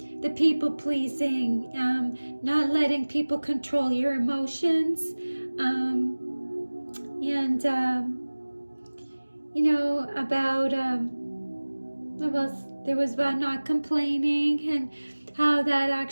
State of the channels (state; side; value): inverted; both; correlation -1.00